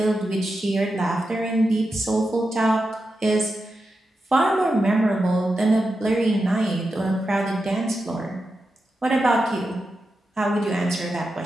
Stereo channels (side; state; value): both; normal; correlation 0.89